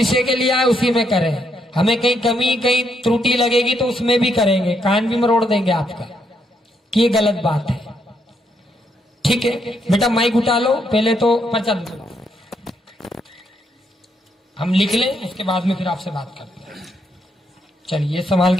के लिए आए उसी में करें। हमें कहीं कमी कहीं त्रुटि लगेगी तो उसमें भी करेंगे, कान भी मरोड़ देंगे आपका कि ये गलत बात है। ठीक है बेटा, माइक उठा लो। पहले तो पर्चा हम लिख लें, उसके बाद में फिर आपसे बात करते हैं। चलिए ये संभाल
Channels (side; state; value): both; normal; correlation 0.76